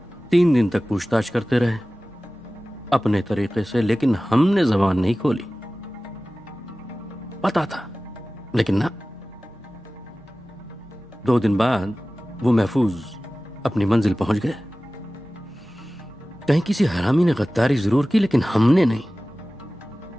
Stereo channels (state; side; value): normal; both; correlation 0.97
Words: 3 दिन तक पूछताछ करते रहे अपने तरीके से, लेकिन हमने जबान नहीं खोली। पता था लेकिन ना। 2 दिन बाद वो महफूज अपनी मंजिल पहुंच गए। कहीं किसी हरामी ने गद्दारी जरूर की, लेकिन हमने नहीं।